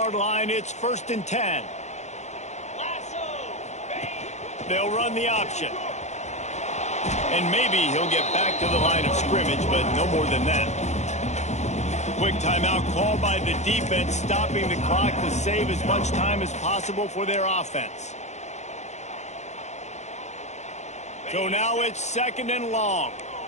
line, it's 1st and 10. They'll run the option. And maybe he'll get back to the line of scrimmage, but no more than that. Quick timeout called by the defense, stopping the clock to save as much time as possible for their offense. So now it's 2nd and long.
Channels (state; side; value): late; right; 0.33 ms